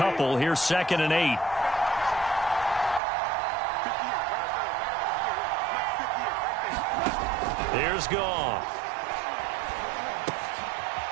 Here's 2nd and 8. Here's Goff.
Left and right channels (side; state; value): left; drops out; at 3.0 s